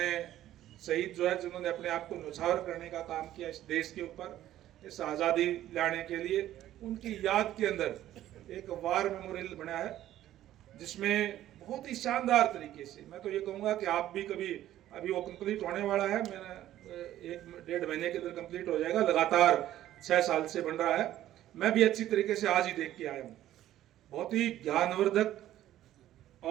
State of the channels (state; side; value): quieter; left; 13.1 dB